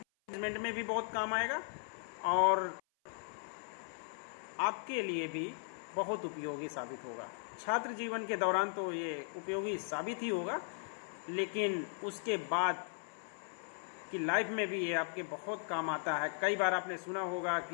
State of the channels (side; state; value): right; silent; 53 dB below the other